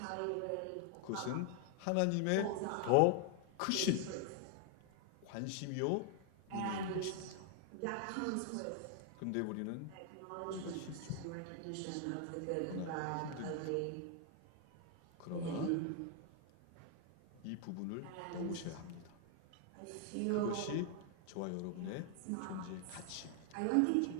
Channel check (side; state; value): both; different; correlation 0.00